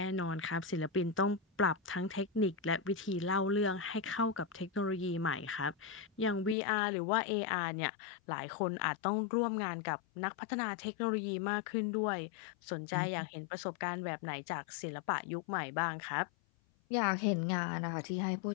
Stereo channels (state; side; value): drops out; right; at 6.6 s